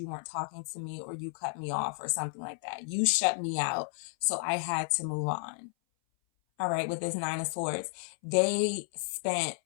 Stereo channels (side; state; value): right; silent; 56 dB below the other